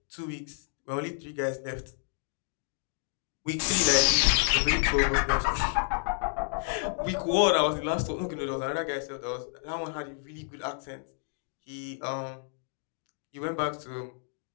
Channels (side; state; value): right; silent; 58 dB below the other